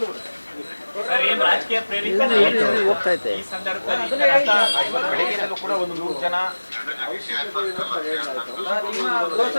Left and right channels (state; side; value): inverted; both; correlation -1.00